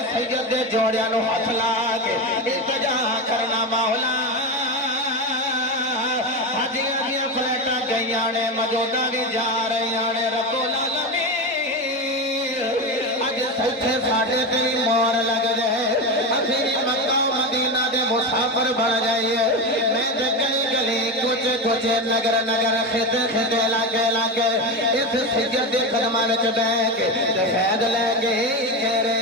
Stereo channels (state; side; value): normal; both; correlation 0.18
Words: سید دے جوڑیاں نو ہاتھ لا کے التجا کرنا مولا. حجیاں دیاں فلیٹاں گئیاں نے موجودہ بھی جا رہیاں نے رب العالمین اج سچے ساڈے تیری مور لگ جائے اسی مکہ مدینہ دے مسافر بن جائیے. میں تے گلی گلی کوچے کوچے نگر نگر خطے خطے لاگے اس سید دے قدماں وچ بیٹھ کے فیض لے کے کہہ